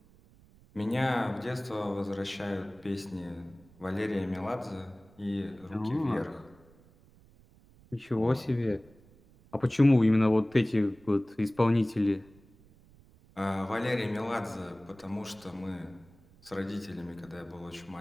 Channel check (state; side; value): noise; right; rumble, 26 dB below the sound